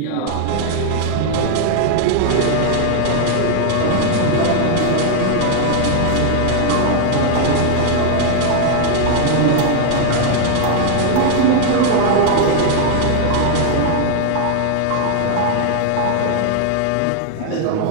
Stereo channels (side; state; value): both; different; correlation 0.00